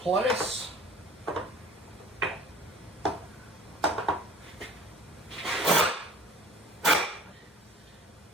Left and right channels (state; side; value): normal; both; correlation 0.46